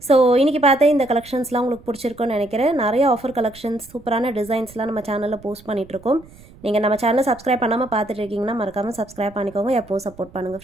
ஸோ இன்றைக்கி பார்த்தா இந்த கலெக்ஷன்ஸ்லாம் உங்களுக்கு பிடிச்சிருக்குன்னு நினைக்கிறேன். நிறைய ஆஃபர் கலெக்ஷன்ஸ் சூப்பரான டிசைன்ஸ்லாம் நம்ம சேனலில் போஸ்ட் பண்ணிகிட்ருக்கோம். நீங்கள் நம்ம சேனலை சப்ஸ்கிரைப் பண்ணாமல் பார்த்துட்டு இருக்கீங்கன்னா மறக்காமல் சப்ஸ்கிரைப் பண்ணிக்கோங்க. எப்போவும் சப்போர்ட் பண்ணுங்கள்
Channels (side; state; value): right; noise; rumble, 22 dB below the sound